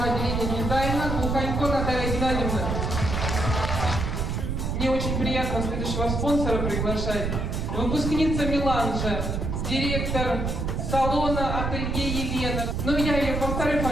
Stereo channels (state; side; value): noise; right; rumble, 1 dB below the sound